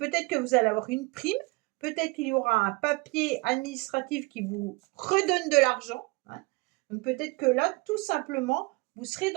que vous allez avoir une prime, peut-être qu'il y aura un papier administratif qui vous redonne de l'argent. Hein. Donc peut-être que là, tout simplement, vous serez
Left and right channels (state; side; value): quieter; left; 26.2 dB